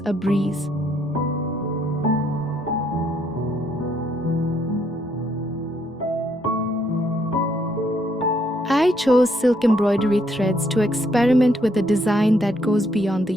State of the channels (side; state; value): both; normal; correlation 0.71